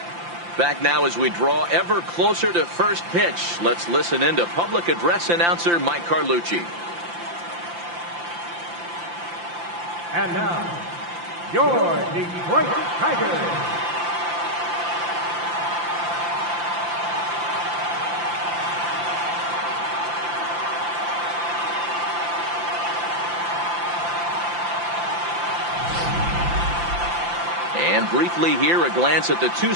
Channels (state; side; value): late; left; 5.8 ms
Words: Back now as we draw ever closer to first pitch. Let's listen in to public address announcer Mike Carlucci. And now, your Detroit Tigers. And briefly here, a glance at the two